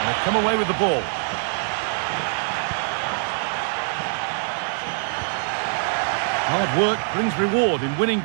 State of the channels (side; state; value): left; silent; 63 dB below the other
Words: they've come away with the ball. Hard work brings reward in winning